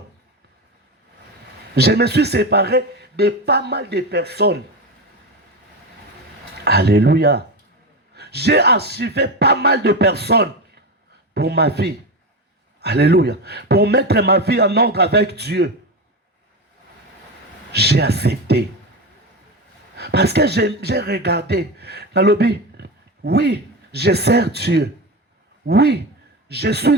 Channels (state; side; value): normal; both; correlation 0.19